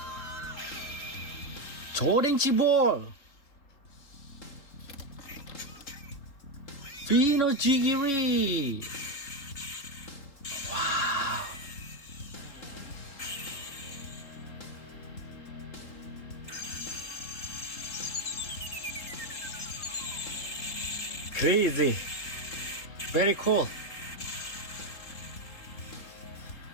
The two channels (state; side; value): late; right; 3.8 ms